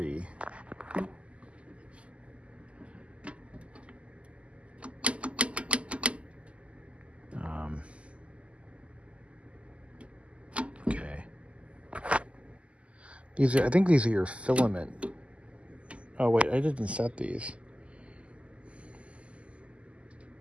Okay. I think these are your filament. Oh wait, I didn't set these.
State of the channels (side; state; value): left; late; 0.058 ms